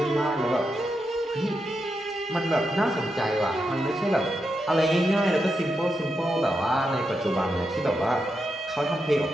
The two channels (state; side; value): normal; both; correlation 0.85